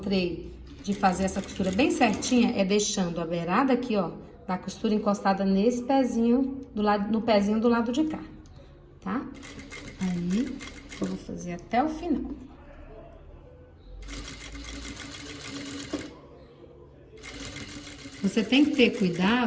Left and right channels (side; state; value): both; identical; correlation 1.00